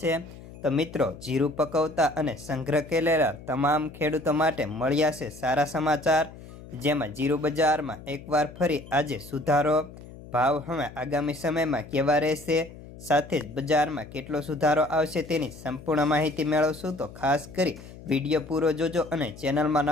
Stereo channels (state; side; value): noise; left; hum, 17 dB below the sound